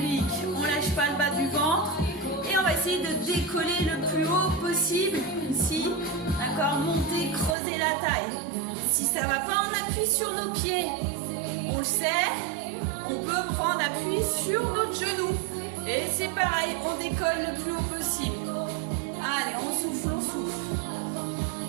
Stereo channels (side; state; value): left; drops out; at 7.6 s